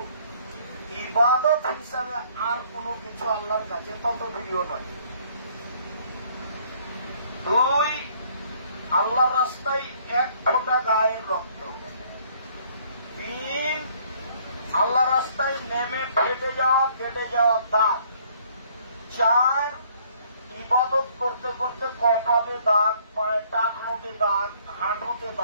ইবাদত হিসাবে আর কোনো কিছু আল্লাহর কাছে তত প্রিয় নয়। দুই, আল্লাহর রাস্তায় এক ফোঁটা গায়ের রক্ত। তিন, আল্লাহর রাস্তায় নেমে কেটে যাওয়া দাগ। চার, ইবাদত করতে করতে কপালে দাগ, পায়ে টাকনোতে দাগ, হাঁটুতে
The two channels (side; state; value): both; inverted; correlation -0.61